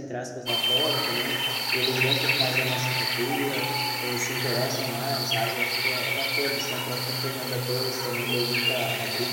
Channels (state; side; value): identical; both; correlation 1.00